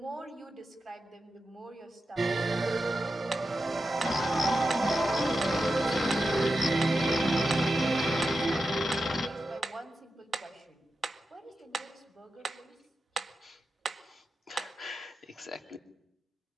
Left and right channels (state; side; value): normal; both; correlation 0.90